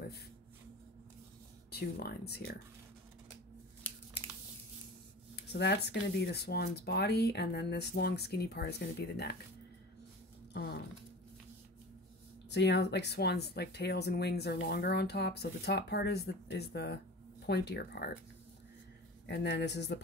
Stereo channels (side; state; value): both; normal; correlation 0.36